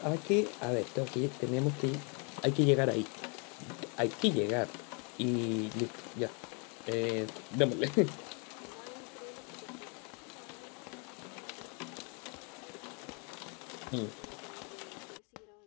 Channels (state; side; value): quieter; right; 35.5 dB